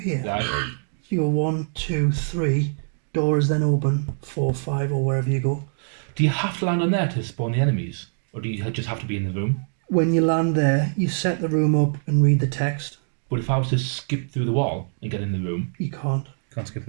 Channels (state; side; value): silent; left; digital silence